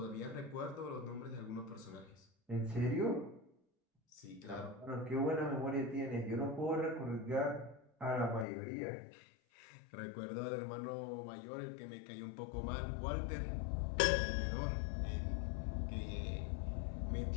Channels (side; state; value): right; drops out; at 8.5 s